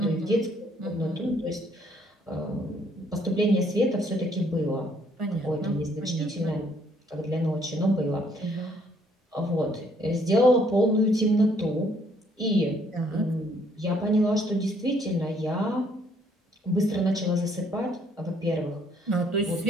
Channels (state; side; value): normal; both; correlation 0.66